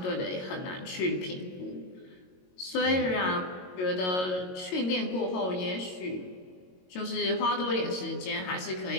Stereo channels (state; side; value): late; right; 22 ms